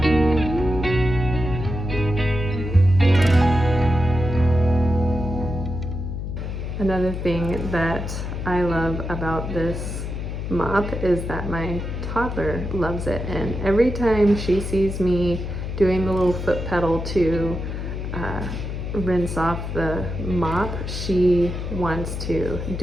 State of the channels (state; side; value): noise; left; hum, 5 dB below the sound